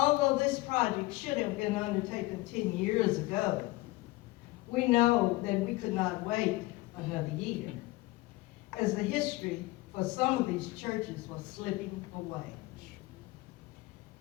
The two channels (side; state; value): right; quieter; 20.2 dB